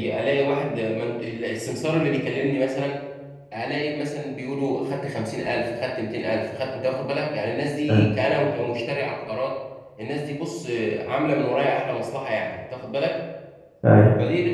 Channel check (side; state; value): both; identical; correlation 1.00